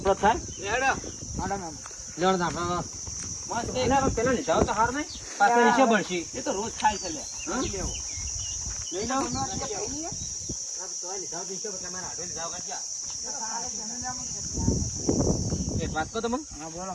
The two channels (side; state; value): both; identical; correlation 1.00